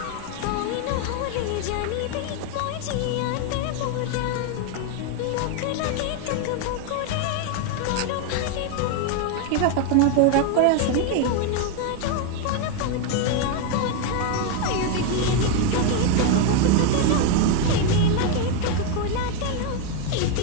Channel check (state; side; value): different; both; correlation 0.01